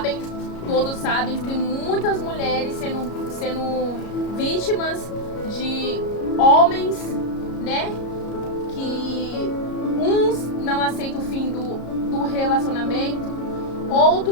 todos sabem, tem muitas mulheres sendo vítimas de homens, né? Que uns não aceitam o fim do relacionamento,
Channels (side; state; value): right; late; 33 ms